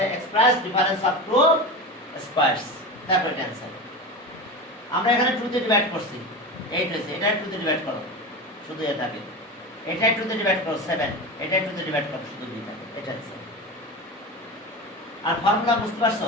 এক্সপ্রেস ডিফারেন্স অফ টু স্কয়ারস তারপর এটা आंसर। আমরা এখানে 2 দিয়ে ডিভাইড করছি 8 হয়েছে এটা 2 দিয়ে ডিভাইড করো শুধু এ থাকে এটা 2 দিয়ে ডিভাইড করো 7 এটা 2 দিয়ে ডিভাইড করো শুধু b থাকে এটা आंसर। আর ফর্মুলা বুঝতে পারছো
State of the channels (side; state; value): both; normal; correlation 0.26